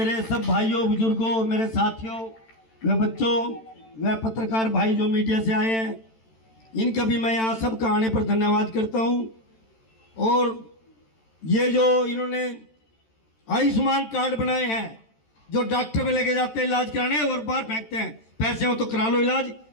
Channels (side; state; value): right; late; 13 ms